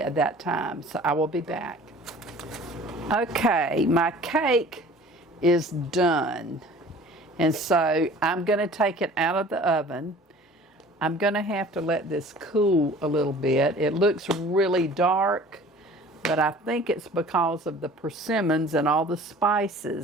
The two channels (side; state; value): both; normal; correlation 0.46